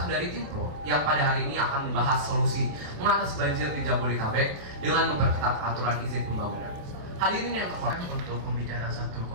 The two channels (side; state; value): left; late; 28 ms